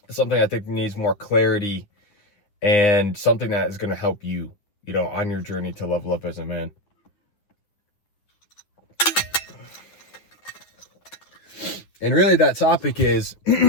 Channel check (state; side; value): late; right; 9.7 ms